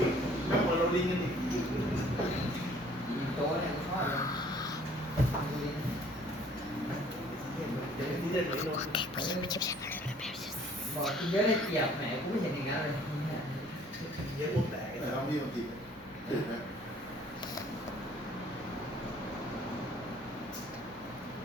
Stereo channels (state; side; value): normal; both; correlation 0.56